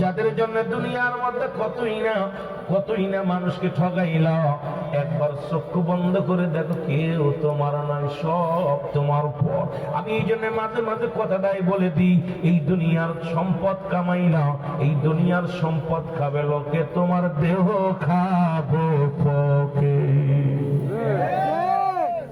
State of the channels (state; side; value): identical; both; correlation 1.00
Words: যাদের জন্য দুনিয়ার মধ্যে কতই না মানুষকে ঠগাইলা, একবার চক্ষু বন্ধ করে দেখো কেউ তোমার নয়, সব তোমার পর। আমি এই জন্য মাঝে মাঝে কথাটাই বলে দিই, এই দুনিয়ার সম্পদ কামাইলা, এই দুনিয়ার সম্পদ খাবে লোকে, তোমার দেহ খাবো পকে।